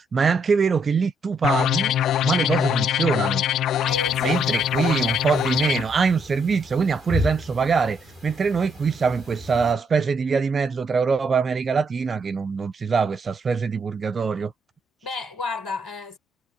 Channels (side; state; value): both; normal; correlation 0.74